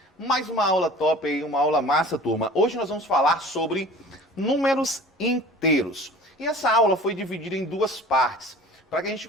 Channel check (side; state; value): both; normal; correlation 0.44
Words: Mais uma aula top aí, uma aula massa, turma. Hoje nós vamos falar sobre números inteiros. E essa aula foi dividida em duas partes, para que a gente